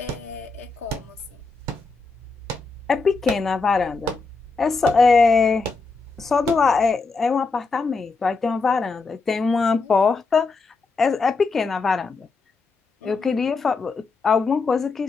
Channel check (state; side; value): quieter; right; 4.2 dB